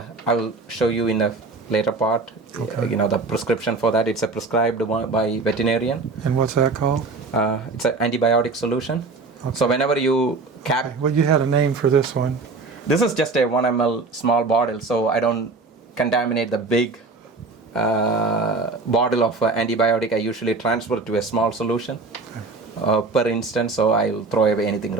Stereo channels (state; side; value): quieter; left; 3.8 dB